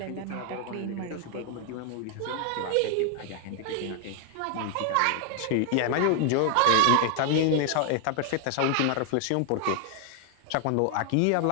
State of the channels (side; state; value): both; different; correlation 0.00